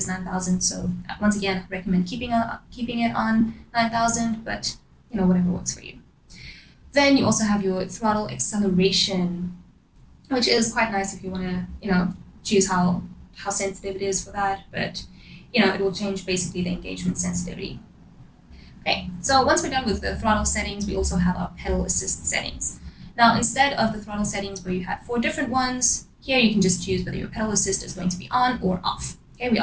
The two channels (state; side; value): identical; both; correlation 1.00